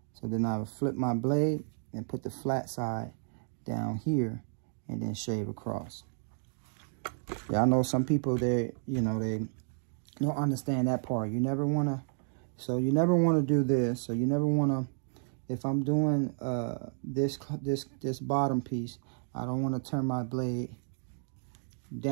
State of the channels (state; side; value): silent; left; 57 dB below the other